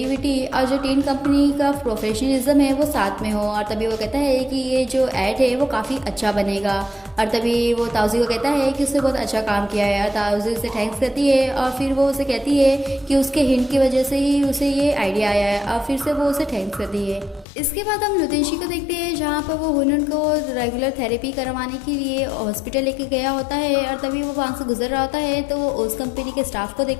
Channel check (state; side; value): drops out; right; at 17.4 s